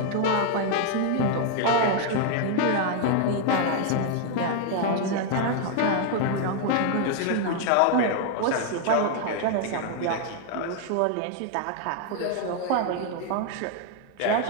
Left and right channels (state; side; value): different; both; correlation 0.00